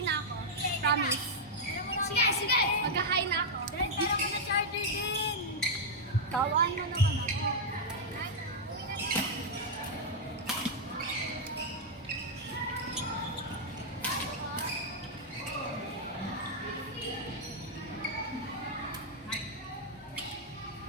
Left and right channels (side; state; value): both; normal; correlation -0.03